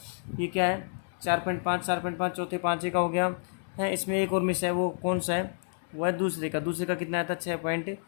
ये क्या है 4.5 चौथे पाँचे का हो गया है। इसमें एक और मिस है, वो कौन सा है, वो है दूसरे का कितना आया था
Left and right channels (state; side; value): silent; right; digital silence